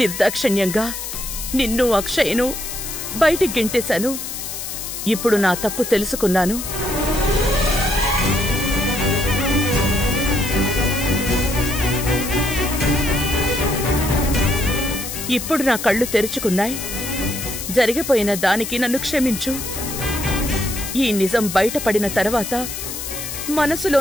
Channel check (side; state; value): left; noise; hiss, 7 dB below the sound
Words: నిన్ను అక్షయ్ను బయటికి గెంటేశాను. ఇప్పుడు నా తప్పు తెలుసుకున్నాను. ఇప్పుడు నా కళ్ళు తెరుచుకున్నాయి. జరిగిపోయిన దానికి నన్ను క్షమించు. ఈ నిజం బయటపడిన తర్వాత